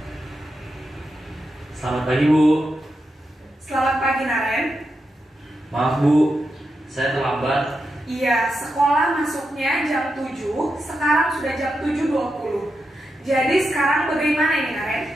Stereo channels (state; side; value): normal; both; correlation 0.87